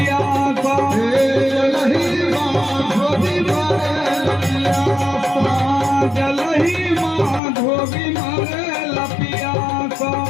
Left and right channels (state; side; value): drops out; right; at 7.4 s